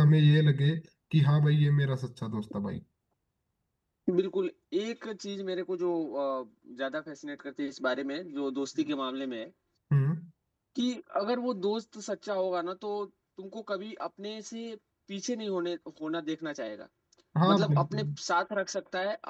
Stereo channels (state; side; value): identical; both; correlation 1.00